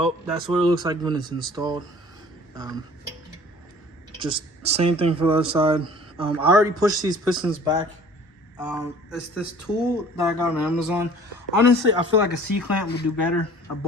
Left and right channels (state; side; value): normal; both; correlation 0.49